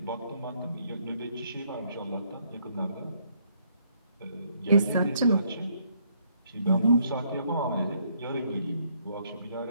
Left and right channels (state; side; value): inverted; both; correlation -0.69